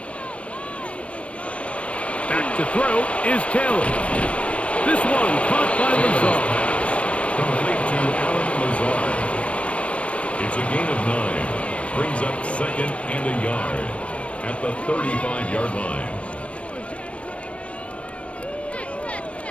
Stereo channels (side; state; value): right; late; 0.062 ms